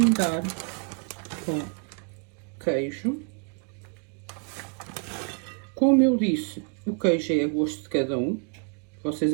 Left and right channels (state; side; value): quieter; left; 38.1 dB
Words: com queijo. Como eu disse, o queijo é a gosto de cada um. Vocês